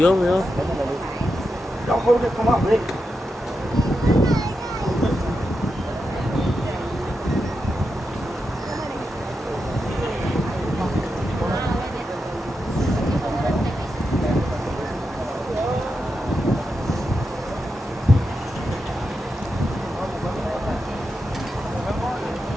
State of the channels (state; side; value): normal; both; correlation 0.87